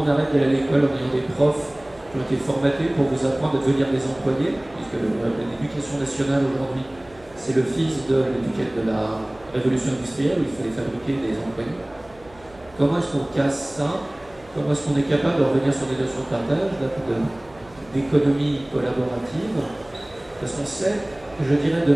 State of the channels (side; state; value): right; noise; hum, 26 dB below the sound